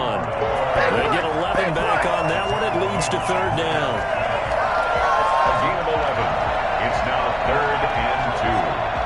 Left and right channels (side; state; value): both; identical; correlation 1.00